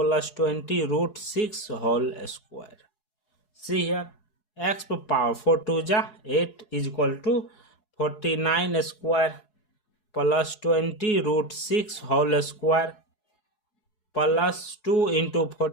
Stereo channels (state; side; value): late; right; 4.7 ms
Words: 20 root 6 whole square. See here, x power 4 2 ja 8 is equal to 49 square plus 20 root 6 whole square plus 2 into